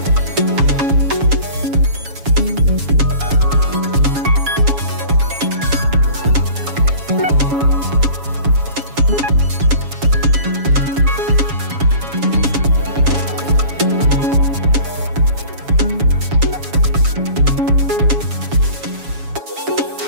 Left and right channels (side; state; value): left; late; 7.1 ms